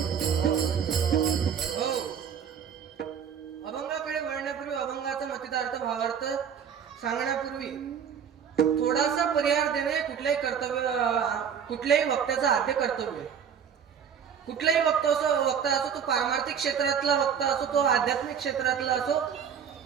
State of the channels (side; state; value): left; quieter; 7.7 dB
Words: सांगण्यापूर्वी थोडासा परिहार देणे कुठल्याही वक्त्याचं आद्य कर्तव्य. कुठलाही वक्ता असो तो पारमार्थिक क्षेत्रातला वक्ता असो तो आध्यात्मिक क्षेत्रातला असो